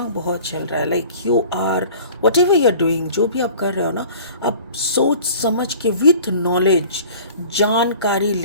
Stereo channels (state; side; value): inverted; both; correlation -0.46